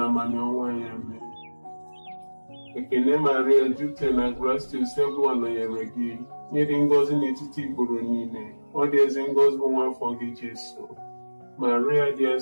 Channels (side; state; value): both; inverted; correlation -1.00